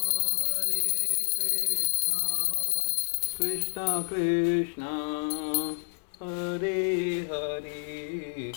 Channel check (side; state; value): right; silent; digital silence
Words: कृष्णा कृष्णा हरे हरे